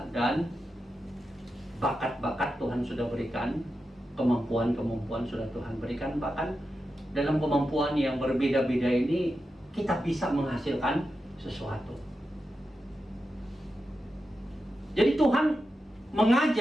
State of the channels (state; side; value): normal; both; correlation 0.89